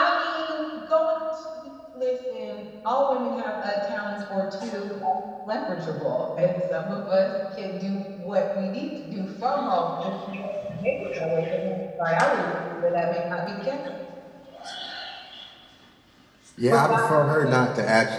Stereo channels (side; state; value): both; identical; correlation 1.00